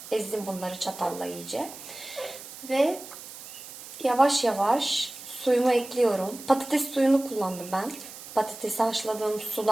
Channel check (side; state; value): right; noise; hiss, 14 dB below the sound